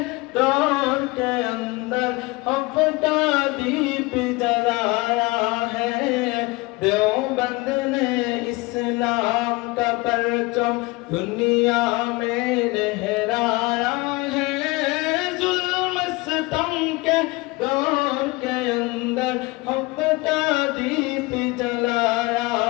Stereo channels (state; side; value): quieter; right; 23.7 dB